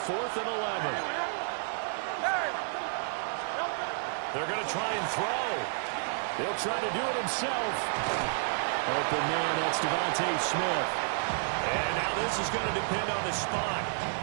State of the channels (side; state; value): left; silent; 57 dB below the other